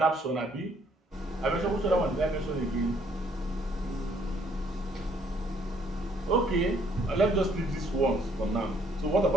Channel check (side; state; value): both; normal; correlation 0.65